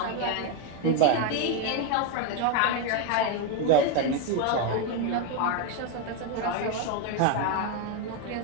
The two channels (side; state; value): both; different; correlation 0.02